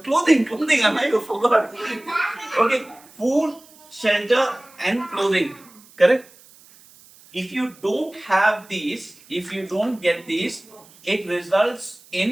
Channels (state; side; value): noise; right; hiss, 25 dB below the sound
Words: I forgot. Okay, food, shelter, and clothing. Correct? If you don't have these, if you don't get these, it results